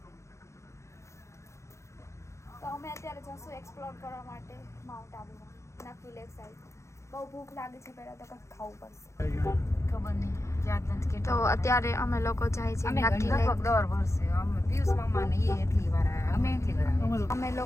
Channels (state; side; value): late; right; 0.14 ms